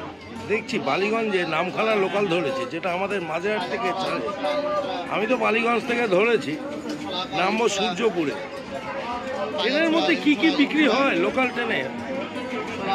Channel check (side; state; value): both; identical; correlation 1.00